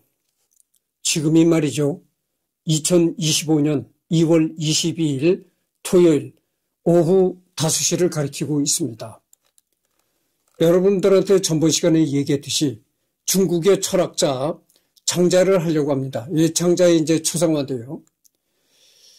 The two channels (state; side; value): identical; both; correlation 1.00